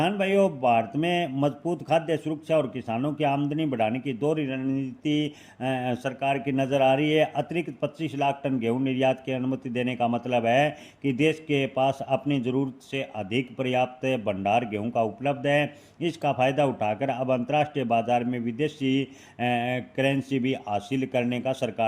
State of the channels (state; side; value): identical; both; correlation 1.00